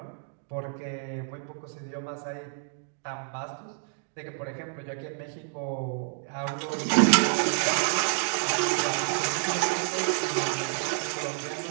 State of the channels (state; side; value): silent; left; digital silence